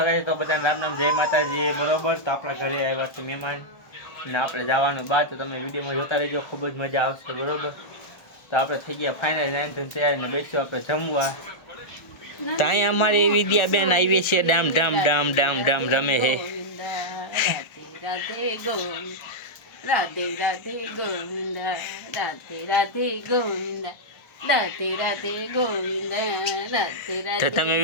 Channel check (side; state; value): right; late; 1.4 ms